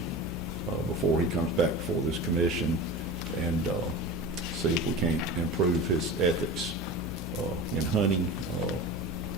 before he comes back before this commission and see if we can't improve his ethics in hunting.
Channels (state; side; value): normal; both; correlation 0.32